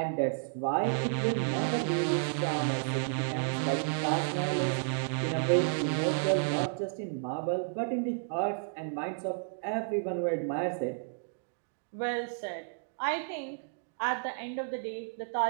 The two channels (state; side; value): silent; left; digital silence